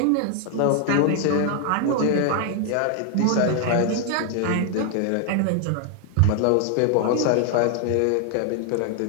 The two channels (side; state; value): both; different; correlation 0.00